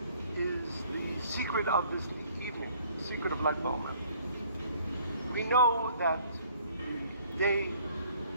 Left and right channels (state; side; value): inverted; both; correlation -0.58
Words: is the secret of this evening, the secret of Lag BaOmer. We know that the day